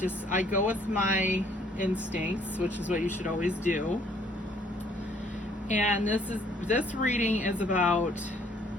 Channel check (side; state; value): both; normal; correlation 0.62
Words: I go with my instincts, which is what you should always do. And this reading is about